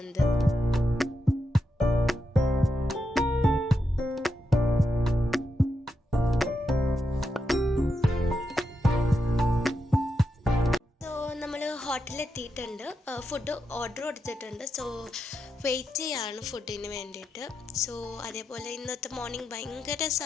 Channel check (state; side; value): normal; both; correlation 0.85